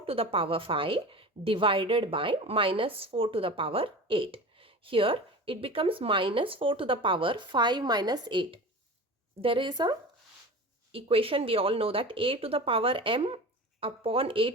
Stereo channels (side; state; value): both; normal; correlation 0.33